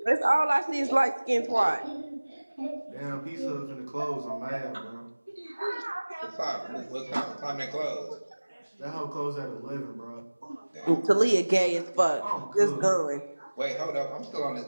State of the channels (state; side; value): inverted; both; correlation -1.00